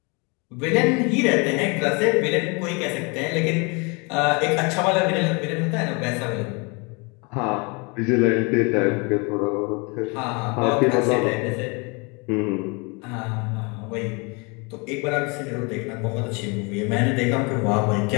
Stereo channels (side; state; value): right; quieter; 30.3 dB